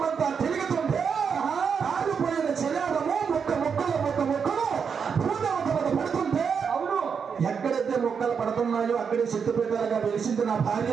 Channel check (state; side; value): quieter; left; 6.4 dB